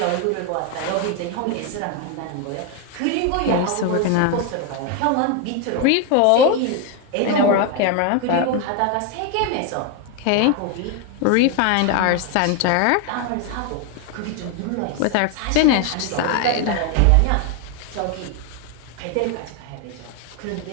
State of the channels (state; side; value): different; both; correlation 0.01